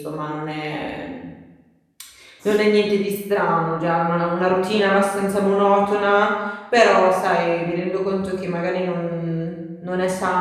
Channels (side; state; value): both; identical; correlation 1.00